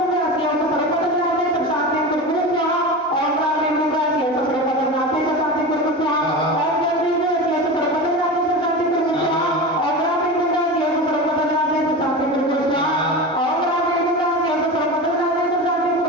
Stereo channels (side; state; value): both; normal; correlation 0.27